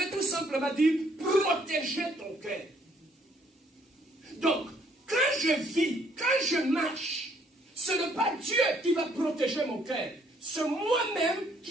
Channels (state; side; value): normal; both; correlation 0.66